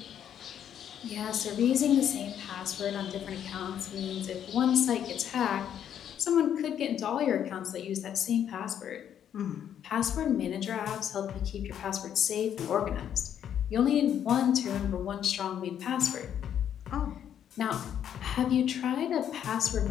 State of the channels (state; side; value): quieter; right; 9.5 dB